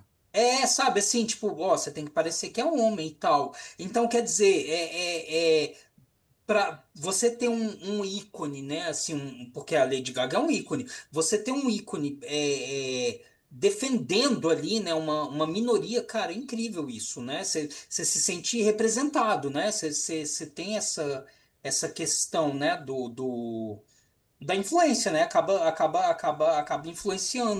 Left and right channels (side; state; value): both; identical; correlation 1.00